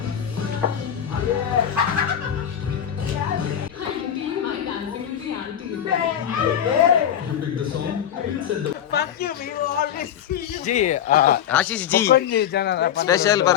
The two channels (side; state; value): right; quieter; 9.6 dB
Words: G Ashish ji special